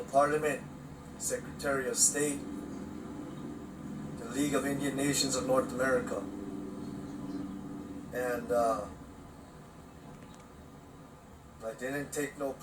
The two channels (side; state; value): both; identical; correlation 1.00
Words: Parliament, Secretary of State, the League of Indian Nations of North America. And I didn't take no